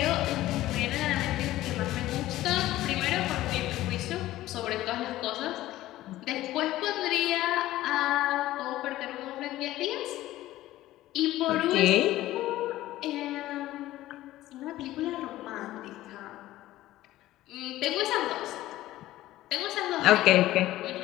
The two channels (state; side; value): quieter; right; 15.5 dB